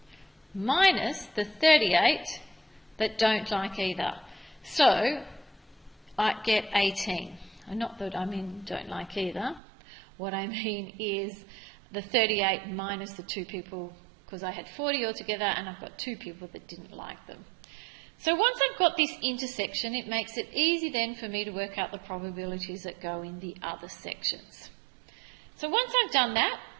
minus the 38 that don't like either. So I get 18. Not that I mean don't like either. What I mean is the 38 minus the 2 people, because I had 40 altogether and I've got 2 people that didn't like them. So once I've got this intersection, it makes it easy then for me to work out the probabilities that go in the other sections. So once I've done that,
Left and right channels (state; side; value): drops out; left; at 9.6 s